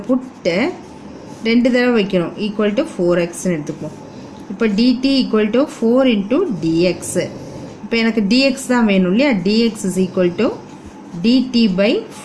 புட்டு 2 தடவை வைக்கணும், ஈக்குவல் டு 4xன்னு எடுத்துக்குவோம். இப்போ dt equal to 4 into dx. இப்போ எனக்கு dx தான் வேணும் இல்லையா. dx is equal to dt by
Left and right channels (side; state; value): both; identical; correlation 1.00